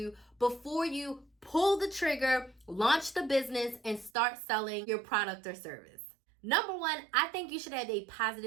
before you pull the trigger, launch the business, and start selling your product or service. Number one, I think you should have a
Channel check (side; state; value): left; drops out; at 4.1 s